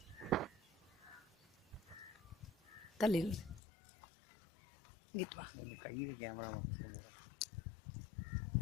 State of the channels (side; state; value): right; drops out; at 3.6 s